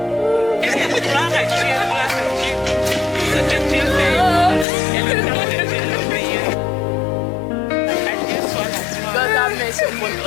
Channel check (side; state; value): right; drops out; at 4.7 s